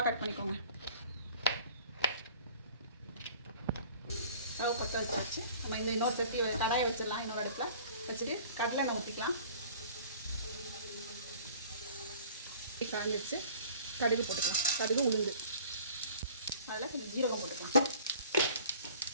கட் பண்ணிக்கோங்க. ஸ்டவ் பற்ற வச்சாச்சு. நம்ம இன்னொரு சட்டி கடாயை வச்சிடலாம். இன்னொரு இடத்துல வச்சுட்டு கடலை எண்ணெய் ஊற்றிக்கலாம். காஞ்சிச்சு. கடுகு போட்டுக்கலாம். கடுகு, உளுந்து, அதில் கொஞ்சம் ஜீரகம் போட்டுக்கலாம்.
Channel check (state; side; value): inverted; both; correlation -0.49